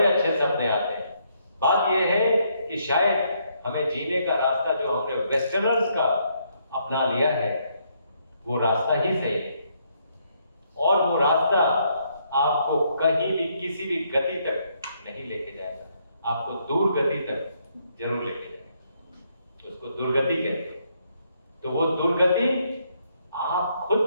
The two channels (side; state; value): both; inverted; correlation -0.73